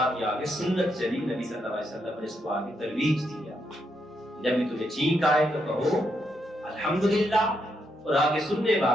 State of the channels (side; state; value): both; normal; correlation 0.79